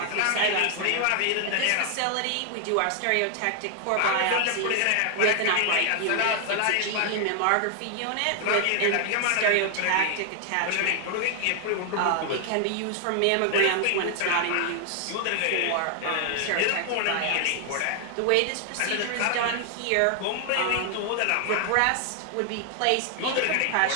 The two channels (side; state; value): both; different; correlation 0.00